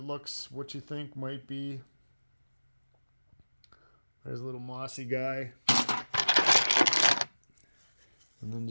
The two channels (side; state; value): both; inverted; correlation -1.00